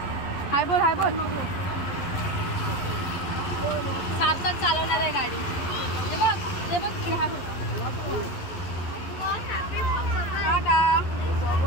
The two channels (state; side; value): late; right; 11 ms